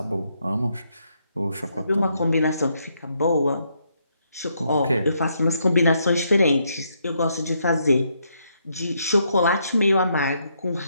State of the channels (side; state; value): both; inverted; correlation -0.76